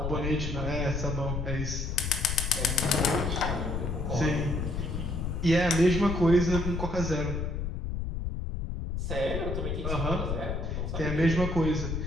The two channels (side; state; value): left; noise; rumble, 3 dB below the sound